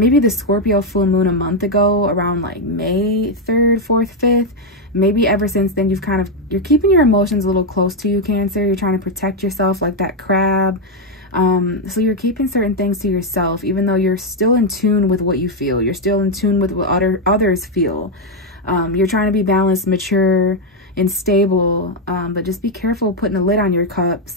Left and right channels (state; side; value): normal; both; correlation 0.03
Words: the Scorpio full moon a month ago, around like May 3rd, 4th, 5th, maybe ever since then you're keeping your emotions a little close to you, Cancer. You're trying to protect yourself like that crab. So you're keeping certain things to yourself, even though you're still in tune with what you feel. You're still in tune with what others feel. You're trying to be balanced, mature, and stable, but just be careful putting a lid on your cup.